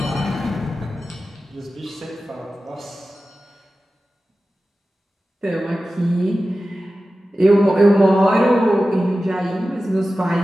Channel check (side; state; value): both; normal; correlation 0.94